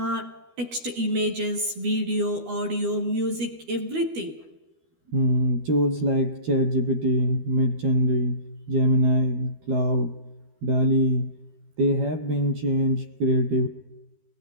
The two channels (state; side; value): late; left; 12 ms